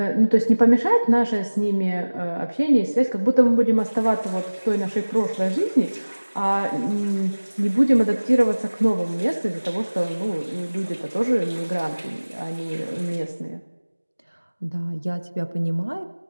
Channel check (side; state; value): both; inverted; correlation -1.00